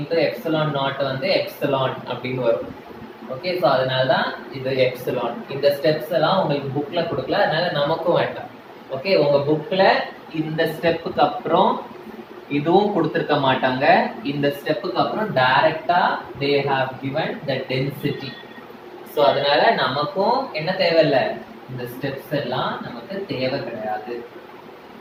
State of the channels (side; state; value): both; identical; correlation 1.00